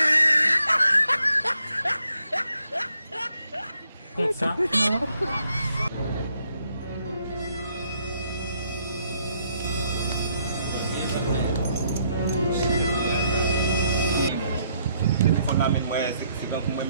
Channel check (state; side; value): inverted; both; correlation -0.72